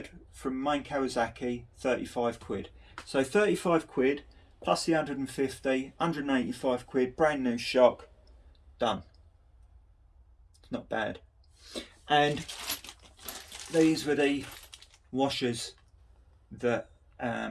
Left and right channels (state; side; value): identical; both; correlation 1.00